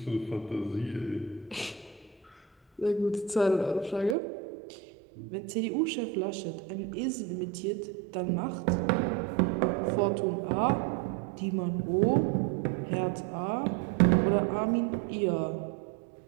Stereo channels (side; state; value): left; drops out; at 4.2 s